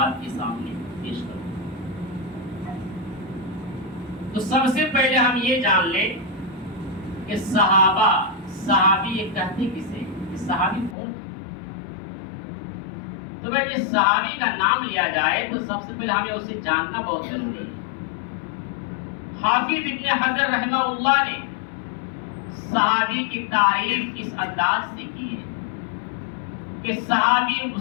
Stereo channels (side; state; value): right; drops out; at 11.0 s